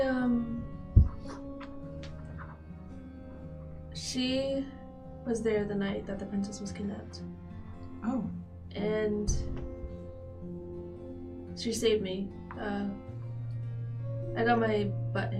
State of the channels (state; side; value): identical; both; correlation 1.00